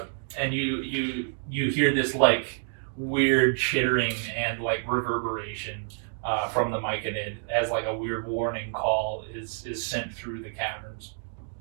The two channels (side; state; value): left; silent; digital silence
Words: And you hear this like weird chittering and like reverberation from the myconid as like a weird warning call is sent through the caverns.